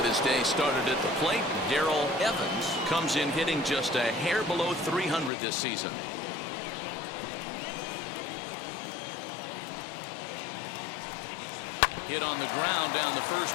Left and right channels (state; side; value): drops out; right; at 5.3 s